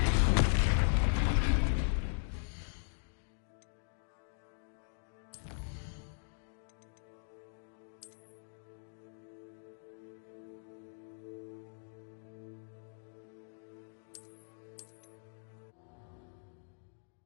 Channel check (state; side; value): silent; right; digital silence